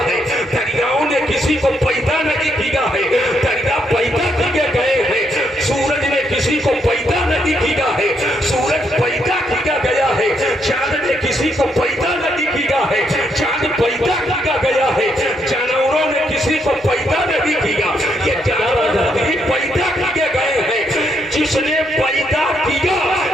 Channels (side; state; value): both; normal; correlation 0.76